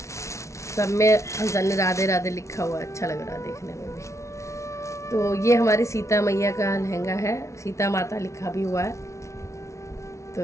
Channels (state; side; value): late; right; 0.14 ms